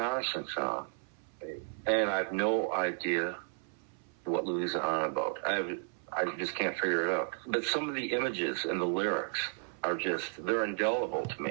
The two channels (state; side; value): silent; left; 55 dB below the other